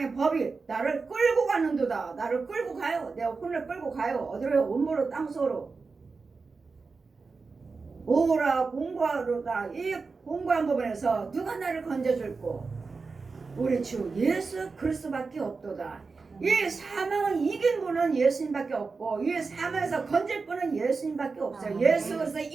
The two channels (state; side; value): quieter; left; 4.4 dB